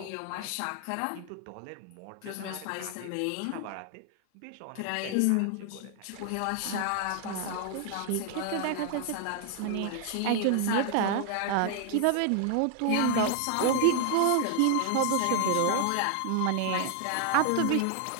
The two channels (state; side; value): different; both; correlation 0.00